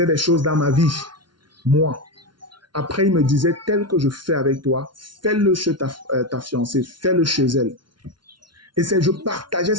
des choses dans ma vie, moi. Après, il me disait, tel que je fais avec toi, fais-le chez ta fiancée, fais-le chez elle. Et je partageais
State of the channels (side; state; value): left; late; 0.71 ms